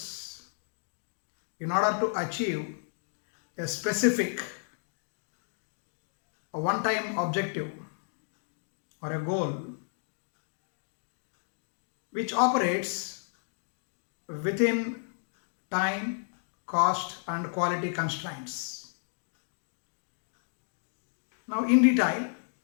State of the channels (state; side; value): silent; right; digital silence